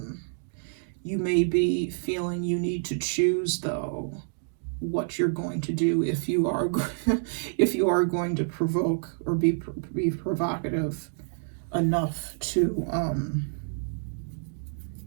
You may be feeling you need to choose, though, what you're going to do if you are if you are going to provoke or be provocative enough to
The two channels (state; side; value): silent; left; digital silence